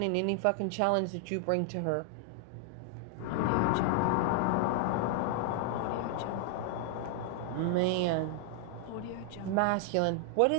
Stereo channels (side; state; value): both; different; correlation 0.00